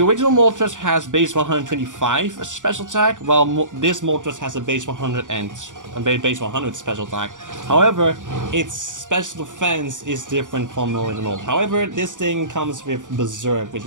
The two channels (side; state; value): left; late; 0.87 ms